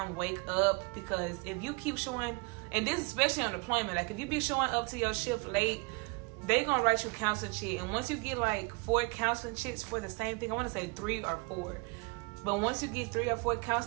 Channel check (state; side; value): quieter; left; 29.7 dB